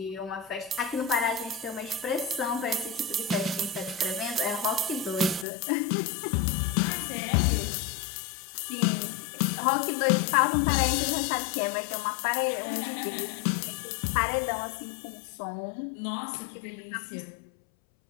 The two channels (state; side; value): drops out; right; at 5.5 s